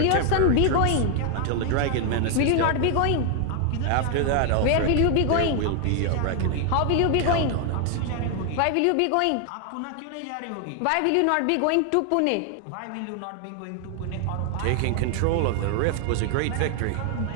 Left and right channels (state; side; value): different; both; correlation 0.00